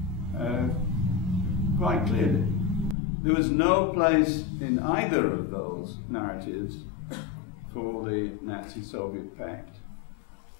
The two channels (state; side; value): drops out; right; at 3.0 s